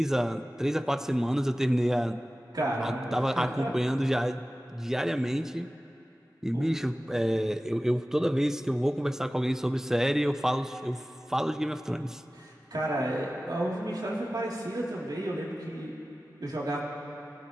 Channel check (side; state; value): both; normal; correlation 0.96